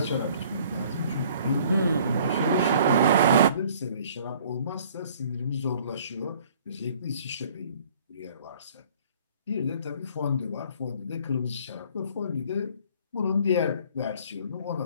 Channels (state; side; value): inverted; both; correlation -0.55